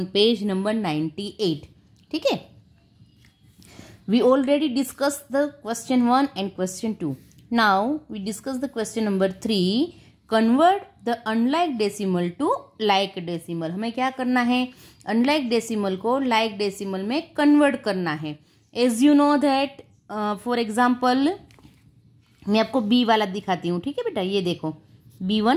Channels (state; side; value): identical; both; correlation 1.00